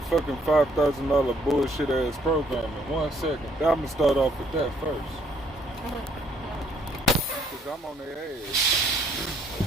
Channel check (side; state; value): both; normal; correlation 0.66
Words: fucking $5,000 bullshit ass program in 1 second. I'm gonna start off with that first. Cause I'm on their ass.